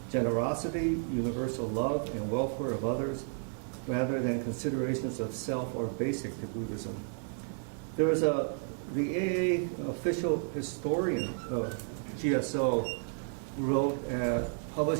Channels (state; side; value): silent; left; 56 dB below the other